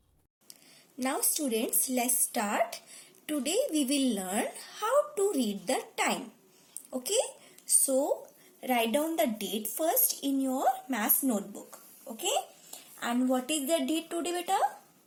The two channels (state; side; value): identical; both; correlation 1.00